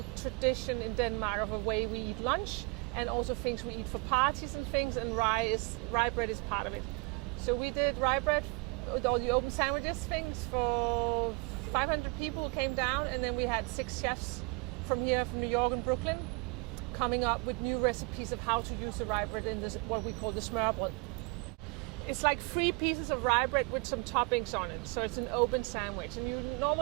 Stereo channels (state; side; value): quieter; left; 29.8 dB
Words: tradition in Denmark of a way we eat lunch, and also things we eat for parties and things, and rye bread is part of it. So we did rye bread with all the open sandwiches things for 500 people came down, and then we had 6 chefs from here, from New York and Brooklyn, coming up with new recipes of how to use the rye bread in this, what we call the smørrebrød. It's like 3 pieces of rye bread with some toppings on it, so it's an open sandwich. And you